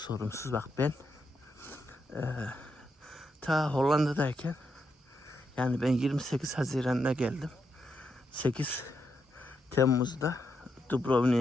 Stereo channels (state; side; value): normal; both; correlation 0.82